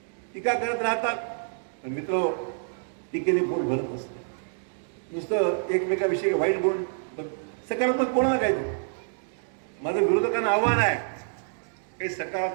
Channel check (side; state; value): left; silent; digital silence